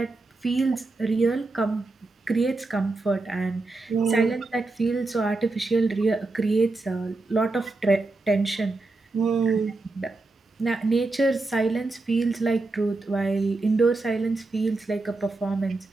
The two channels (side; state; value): left; quieter; 3.3 dB